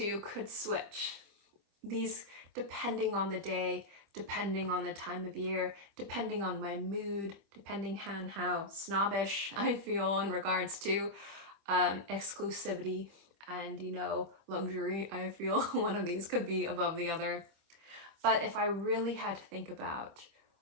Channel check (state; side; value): late; left; 25 ms